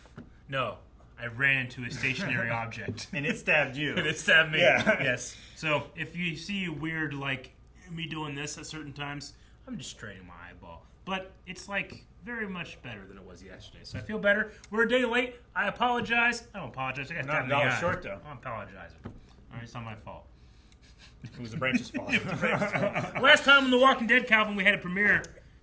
No, I ran into a stationary object. And it stabbed you. And it stabbed me. Yeah. Yes. So if you see weird, like, me doing this at certain times, I'm just straining my eyeball. But it's, like, very much better than it was yesterday. So I feel better. We're a day late. I apologize. I don't apologize. I got not a dollar short, though. I'm apologizing. All right, it's not my fault. It was the branch's fault. Last time on The Walking Dead, Calvin, we had a premiere.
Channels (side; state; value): both; identical; correlation 1.00